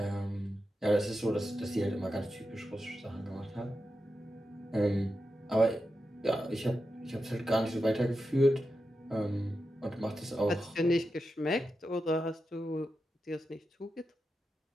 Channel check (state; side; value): normal; both; correlation 0.89